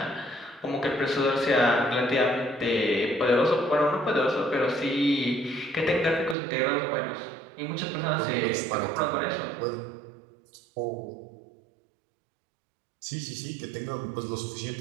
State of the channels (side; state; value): left; drops out; at 6.4 s